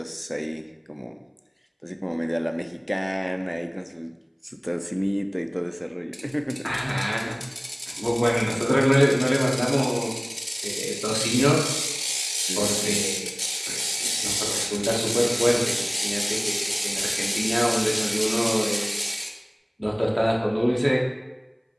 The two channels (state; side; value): identical; both; correlation 1.00